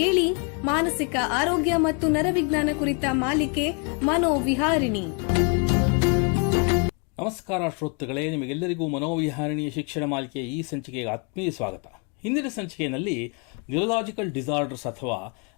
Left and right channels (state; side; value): quieter; right; 35.9 dB